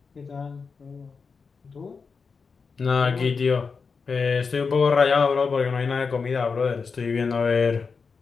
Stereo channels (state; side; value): quieter; right; 5.1 dB